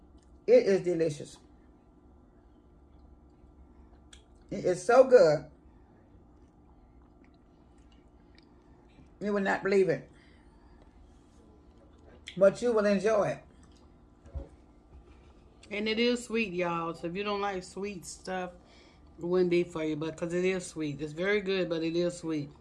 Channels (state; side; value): identical; both; correlation 1.00